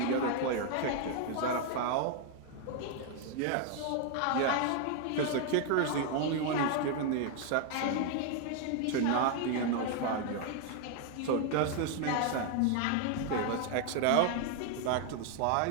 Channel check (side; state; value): both; different; correlation 0.00